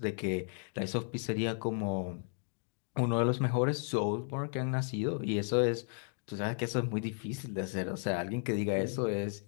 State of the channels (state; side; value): silent; right; 55 dB below the other